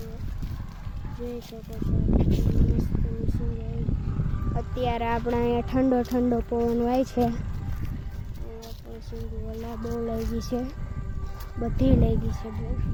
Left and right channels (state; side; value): identical; both; correlation 1.00